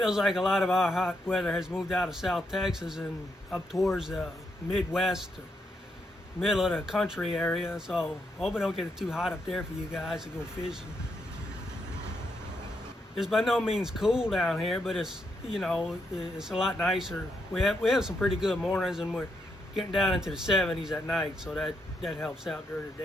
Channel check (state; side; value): normal; both; correlation 0.80